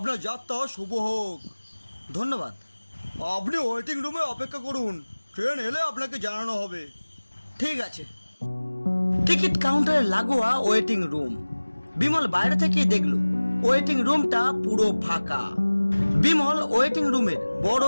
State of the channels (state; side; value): inverted; both; correlation -1.00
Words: যাত্রা শুভ হোক। ধন্যবাদ। আপনি ওয়েটিং রুমে অপেক্ষা করুন, ট্রেন এলে আপনাকে জানানো হবে। ঠিক আছে। টিকিট কাউন্টারে লাগোয়া ওয়েটিং রুম। বিমল বাইরে থেকে দেখলো ওয়েটিং রুমটা পুরো ফাঁকা। বিমল ওয়েটিং রুমের বড়